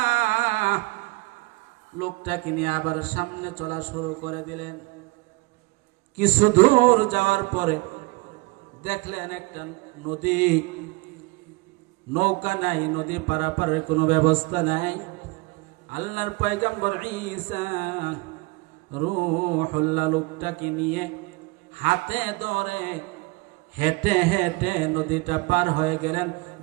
লোকটাকে নিয়ে আবার সামনে চলা শুরু করে দিলেন। কিছু দূর যাওয়ার পরে দেখলেন একটা নদী, নৌকা নাই, নদী পারাপারের কোনো ব্যবস্থা নাই। আল্লাহর পয়গম্বর ঈসা রূহুল্লাহ লোকটাকে নিয়ে হাতে ধরে হেঁটে হেঁটে নদীটা পার হয়ে গেলেন।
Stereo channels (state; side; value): quieter; left; 24.6 dB